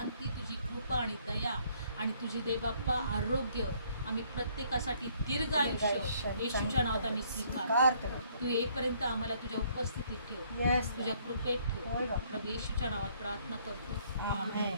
तुझी कृपा आणि दया आणि तुझी देवबाप्पा आरोग्य आम्ही प्रत्येकासाठी दीर्घ आयुष्य येशूच्या नावात आम्ही स्वीकारतो. तू येईपर्यंत आम्हाला तुझ्या उपस्थितीत ठेव, येस तुझ्या कृपेत होय ठेव. बाप्पा. प्रभू येशूच्या नावात प्रार्थना करतो. आमेन.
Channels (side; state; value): both; inverted; correlation -0.64